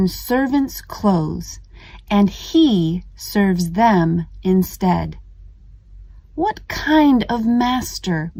servants' clothes and he serves them instead. What kind of master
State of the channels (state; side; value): identical; both; correlation 1.00